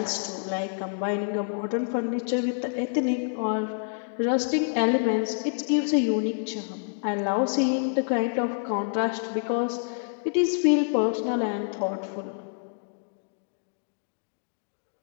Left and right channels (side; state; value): right; silent; digital silence